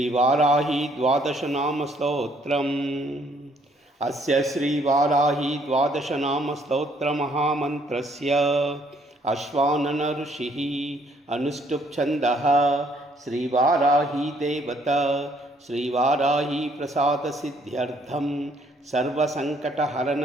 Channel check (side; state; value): both; normal; correlation 0.66